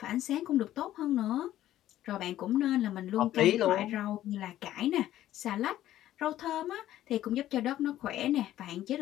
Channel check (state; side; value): quieter; right; 13.3 dB